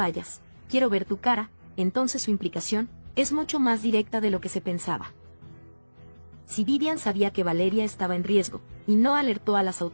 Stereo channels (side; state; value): both; inverted; correlation -1.00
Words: quiero ver tu cara, entonces su implicación es mucho más directa de lo que se pensaba. Si Vivian sabía que Valeria estaba en riesgo, y no alertó a las